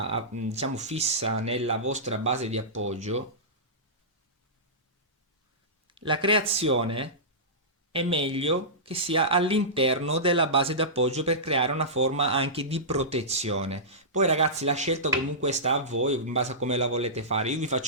diciamo fissa nella vostra base di appoggio, la creazione è meglio che sia all'interno della base d'appoggio per creare una forma anche di protezione. Poi ragazzi la scelta comunque sta a voi in base a come la volete fare. Io vi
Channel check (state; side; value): normal; both; correlation -0.18